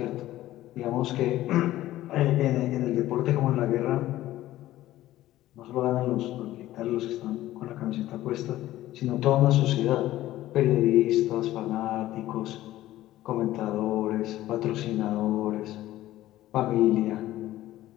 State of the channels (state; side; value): quieter; right; 15.0 dB